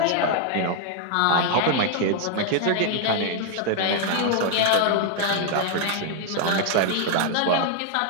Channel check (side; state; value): both; different; correlation 0.00